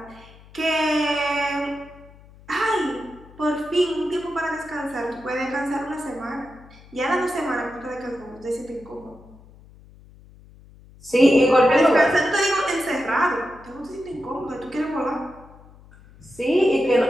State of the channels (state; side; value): noise; left; hum, 23 dB below the sound